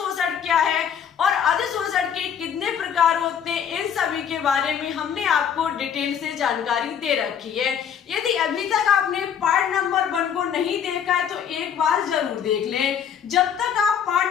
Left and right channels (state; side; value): quieter; right; 8.2 dB